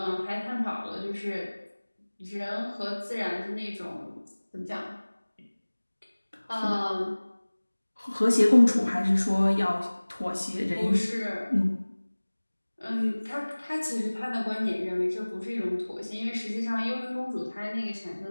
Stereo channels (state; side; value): inverted; both; correlation -1.00